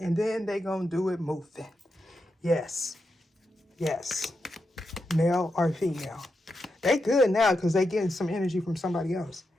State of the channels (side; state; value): both; normal; correlation 0.86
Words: then they gonna do it moving. Yes, male or female. They good now because they getting some energy from somebody else.